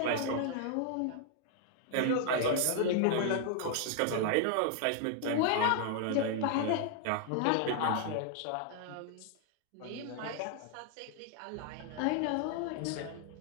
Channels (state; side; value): different; both; correlation 0.00